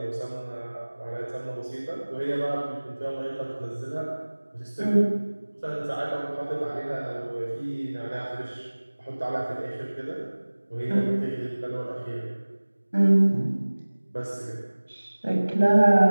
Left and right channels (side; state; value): both; inverted; correlation -1.00